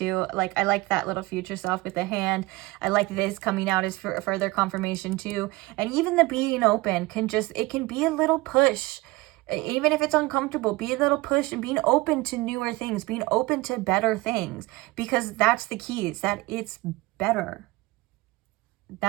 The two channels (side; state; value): left; quieter; 21.4 dB